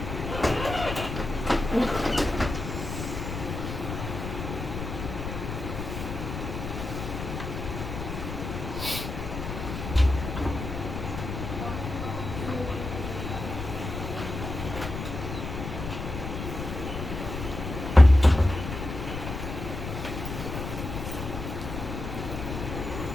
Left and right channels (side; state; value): left; noise; rumble, 6 dB below the sound